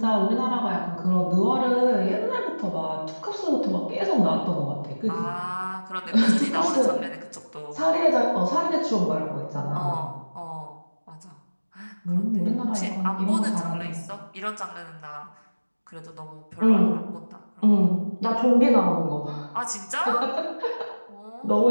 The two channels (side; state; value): both; inverted; correlation -1.00